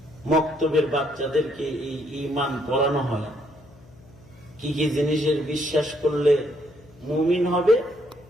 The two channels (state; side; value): noise; left; hum, 24 dB below the sound